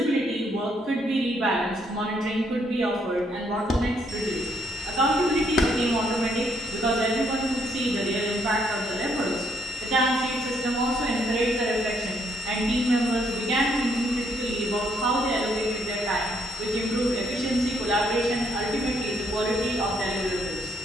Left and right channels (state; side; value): normal; both; correlation 0.71